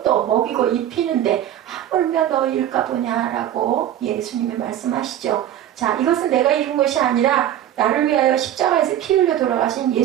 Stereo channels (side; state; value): left; quieter; 11.5 dB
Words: 먹이고 입히는데 하물며 너희일까 보냐라고 예수님이 말씀하시죠. 자, 이것은 내가 이룬 것이 아니라 나를 위하여 십자가에서 피 흘려 돌아가신